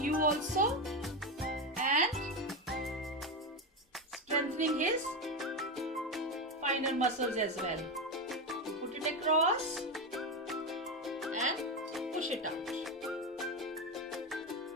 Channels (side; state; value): both; normal; correlation 0.14